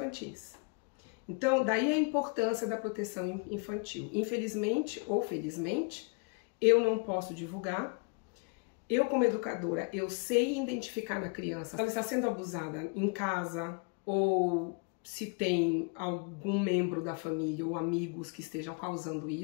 Então, daí a importância da proteção infantil. Infelizmente ou felizmente, eu não posso divulgar. Eu, como educadora, eu sei identificar na criança se ela está sendo abusada em casa ou se tem algum membro da família ou amigos que estejam causando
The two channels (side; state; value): right; quieter; 33.3 dB